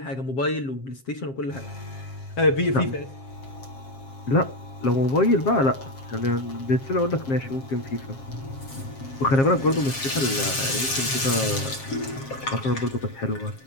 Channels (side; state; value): right; late; 7.5 ms